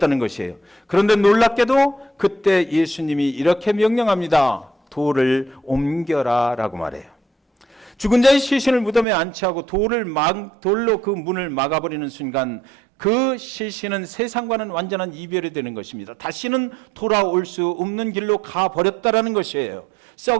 것이에요. 그런데 놀랍게도 그때 예수님이 이렇게 명령합니다. 돌을 옮겨라 라고 말해요. 죽은 자의 시신을 무덤에 안치하고 돌로 그 문을 막아버리는 순간 그 시신은 세상과는 완전한 이별이 되는 것입니다. 다시는 돌아올 수 없는 길로 가버렸다라는 것이에요.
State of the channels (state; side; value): drops out; left; at 9.1 s